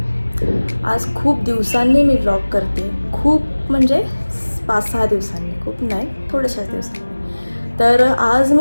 आज खूप दिवसांनी मी vlog करते. खूप म्हणजे 5-6 दिवसांनी, खूप नाही, थोड्याशाच दिवसांनी. तर आज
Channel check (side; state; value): both; inverted; correlation -1.00